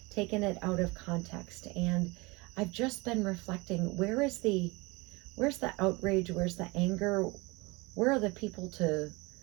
taken it out of context? And I've just been reflecting, where's the outrage? Where's the anger? Where are the people to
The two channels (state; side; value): quieter; left; 25.0 dB